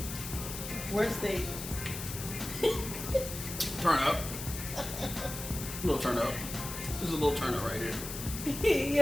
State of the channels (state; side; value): noise; left; hiss, 8 dB below the sound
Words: Worst date. Turn up. A little turn up. This is a little turn up right here. He